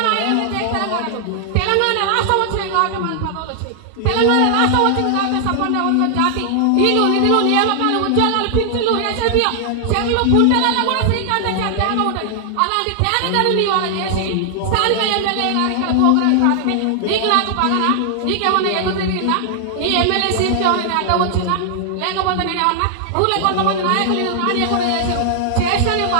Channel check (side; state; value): both; different; correlation -0.01